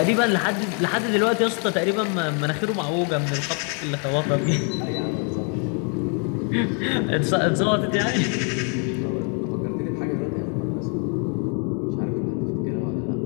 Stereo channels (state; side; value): quieter; right; 39.7 dB